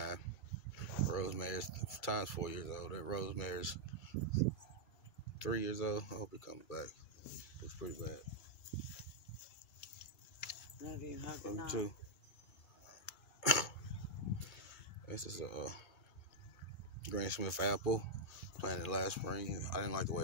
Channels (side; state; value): right; late; 2.3 ms